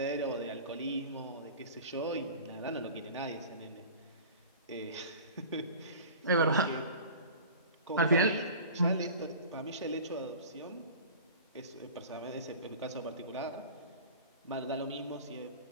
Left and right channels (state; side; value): inverted; both; correlation -0.39